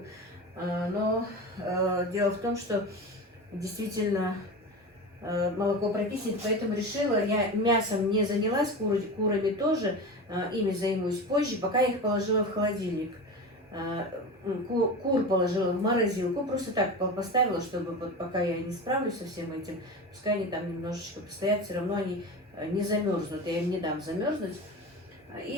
Но дело в том, что действительно молоко прокиснет, поэтому решила, я мясом не занялась, курами тоже, ими займусь позже, пока я их положила в холодильник. Кур положила в морозилку, просто так поставила, чтобы вот пока я не справлюсь со всем этим, пускай они там немножечко постоят, все равно они не замерзнут, я им не дам замерзнуть.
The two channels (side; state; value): both; normal; correlation 0.27